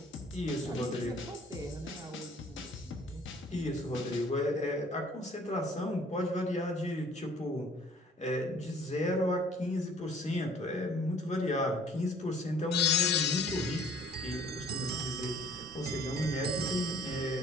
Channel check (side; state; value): both; normal; correlation 0.55